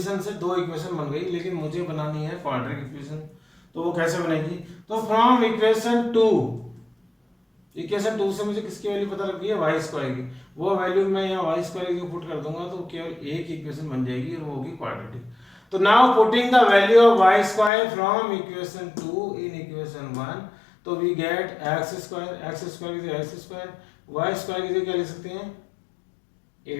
से दो इक्वेशन बन गई, लेकिन मुझे बनानी है क्वाड्रेटिक इक्वेशन, तो वो कैसे बनेगी, तो फ्रॉम इक्वेशन 2 से मुझे किसकी वैल्यू पता लग गई है y स्क्वायर की, वो वैल्यू मैं यहाँ y स्क्वायर की पुट कर दूंगा तो केवल एक इक्वेशन बन जाएगी और वो होगी क्वाड्रेटिक। तो now putting the value of y square from equation 2 in equation 1, तो वी गेट x स्क्वायर की x स्क्वायर, y स्क्वायर की क्या लिख सकते हैं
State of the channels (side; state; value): right; drops out; at 17.7 s